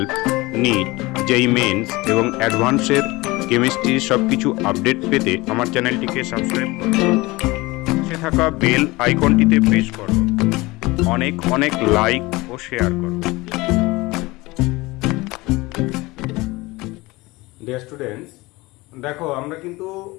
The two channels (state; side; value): quieter; right; 21.8 dB